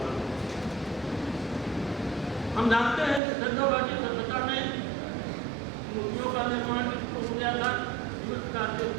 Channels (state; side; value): drops out; left; at 3.2 s